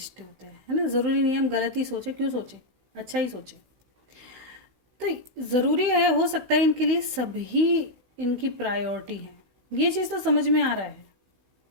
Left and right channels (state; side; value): late; left; 16 ms